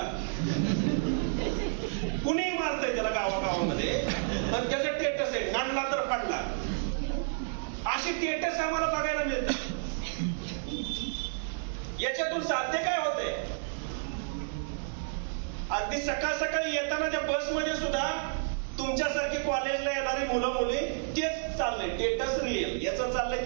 कुणी मारतंय त्याला गावागावामध्ये आणि त्याचं स्टेटस आहे नाडला तर पडला. अशी स्टेटस आम्हाला बघायला मिळतात. याच्यातून साध्य काय होतंय? अगदी सकाळ सकाळी येताना त्या बसमध्ये सुद्धा तुमच्यासारखे कॉलेजला येणारी मुलं मुली तेच चाललंय, स्टेटस रिअल याचं चाललंय.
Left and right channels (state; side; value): silent; left; 57 dB below the other